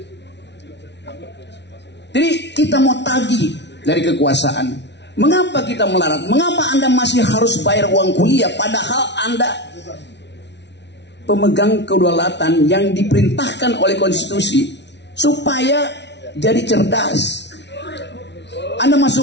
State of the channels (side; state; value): right; late; 0.50 ms